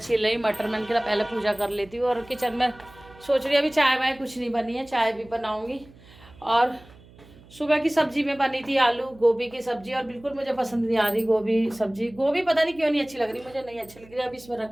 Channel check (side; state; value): right; noise; hum, 23 dB below the sound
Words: रही मटर, मैंने कहा पहले पूजा कर लेती हूँ। और किचन में सोच रही अभी चाय वाय कुछ नहीं बनी है, चाय भी बनाऊँगी। और सुबह की सब्जी में बनी थी आलू गोभी की सब्जी, और बिल्कुल मुझे पसंद नहीं आ रही गोभी सब्जी, गोभी पता नहीं क्यों नहीं अच्छी लग रही, मुझे नहीं अच्छी लग रही। अब इसमें